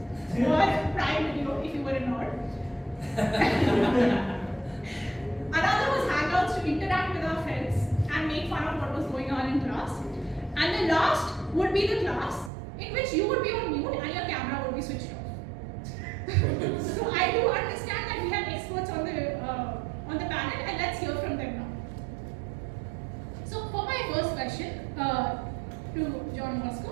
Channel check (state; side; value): drops out; left; at 12.5 s